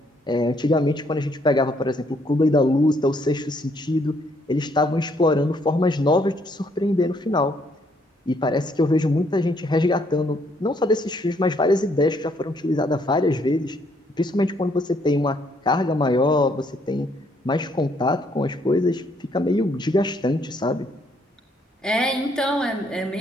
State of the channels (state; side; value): normal; both; correlation 0.69